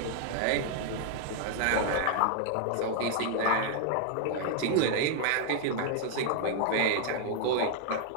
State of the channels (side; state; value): both; different; correlation 0.00